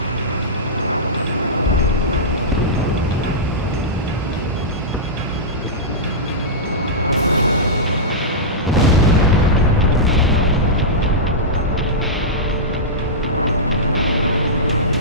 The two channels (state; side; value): normal; both; correlation -0.13